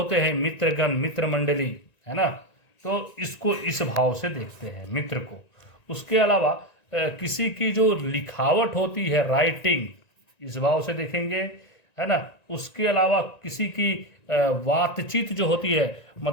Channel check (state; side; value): late; right; 1.9 ms